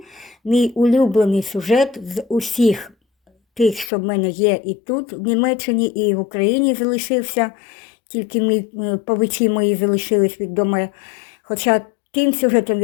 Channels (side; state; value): right; drops out; at 3.9 s